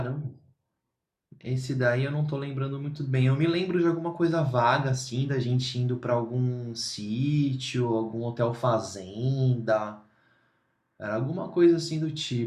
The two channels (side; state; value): both; identical; correlation 1.00